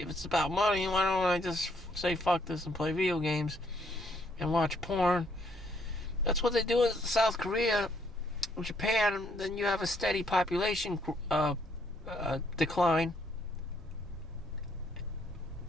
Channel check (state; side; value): normal; both; correlation 0.70